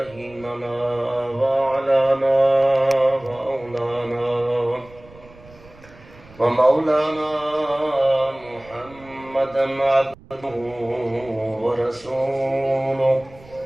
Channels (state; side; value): noise; right; rumble, 23 dB below the sound